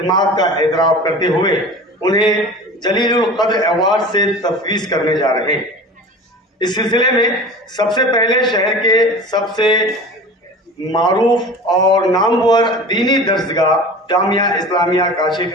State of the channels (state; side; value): normal; both; correlation 0.36